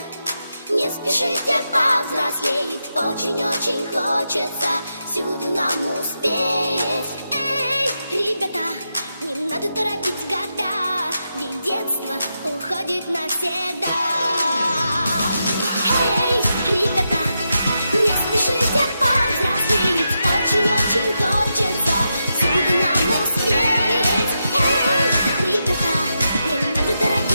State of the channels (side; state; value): both; inverted; correlation -0.86